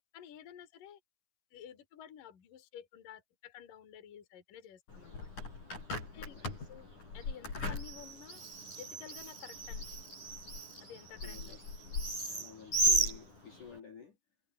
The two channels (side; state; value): right; late; 10 ms